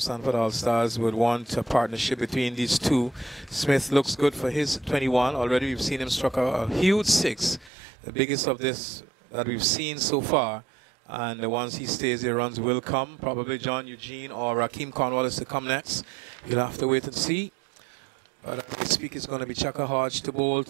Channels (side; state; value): left; drops out; at 7.7 s